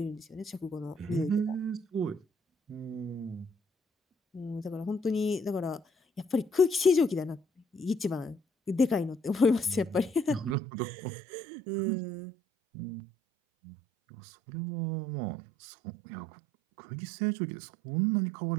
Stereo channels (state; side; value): drops out; left; at 10.6 s